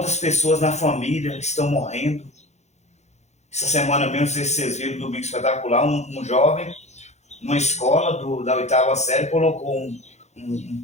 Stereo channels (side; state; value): right; late; 0.33 ms